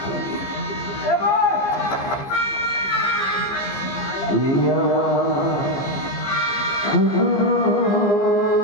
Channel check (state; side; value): late; right; 15 ms